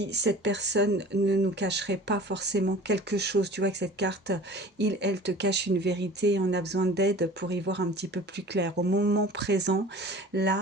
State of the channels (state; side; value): normal; both; correlation 0.43